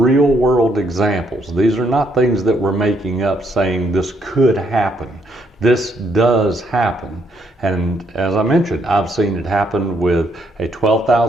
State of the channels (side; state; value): both; normal; correlation 0.72